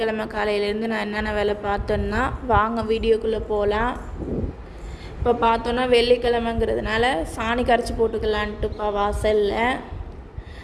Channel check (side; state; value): both; identical; correlation 1.00